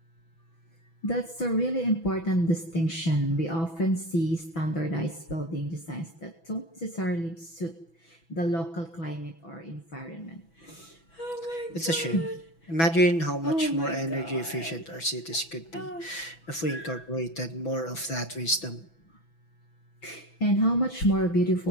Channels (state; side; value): late; right; 6.1 ms